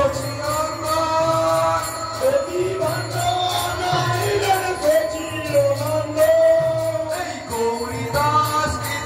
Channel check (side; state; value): both; identical; correlation 1.00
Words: নদী বন্ডনাইলেন সচিনন্দন এই গৌরীদাস